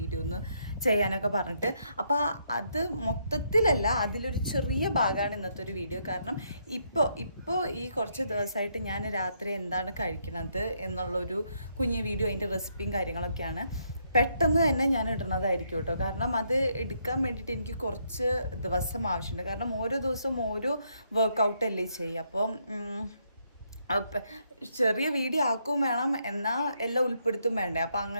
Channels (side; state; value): both; inverted; correlation -0.74